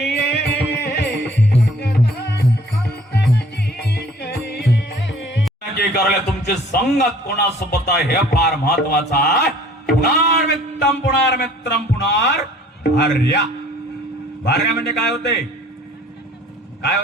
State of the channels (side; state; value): both; normal; correlation 0.53